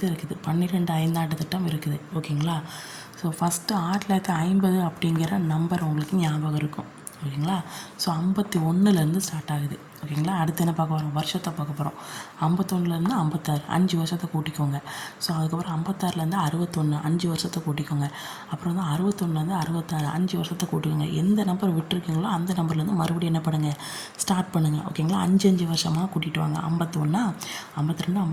இருக்குது. 12 5 ஆண்டு திட்டம் இருக்குது, ஓகேங்களா. ஸோ ஃபஸ்ட்டு 1950 அப்படிங்கிற நம்பர் உங்களுக்கு ஞாபகம் இருக்கும், ஓகேங்களா. ஸோ 51லேருந்து ஸ்டார்ட் ஆகுது, ஓகேங்களா. அடுத்து என்ன பார்க்க போகிறோம்? வருஷத்தை பார்க்க போகிறோம். 51லேருந்து 56, 5 வருஷத்தை கூட்டிக்கோங்க. ஸோ அதுக்கப்புறம் 56லேருந்து 61, 5 வருஷத்தை கூட்டிக்கோங்க. அப்புறம் வந்து 61லேருந்து 66, 5 வருஷத்தை கூட்டிக்கோங்க. எந்த நம்பர் விட்டுருக்கீங்களோ அந்த நம்பர்லேருந்து மறுபடியும் என்ன பண்ணுங்கள், ஸ்டார்ட் பண்ணுங்கள், ஓகேங்களா. 5 வருஷமாக கூட்டிகிட்டு வாங்க. 51, 52, 53,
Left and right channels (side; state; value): both; identical; correlation 1.00